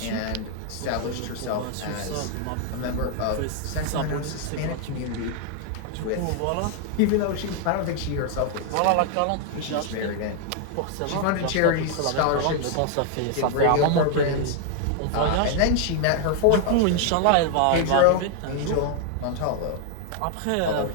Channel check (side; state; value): both; different; correlation 0.00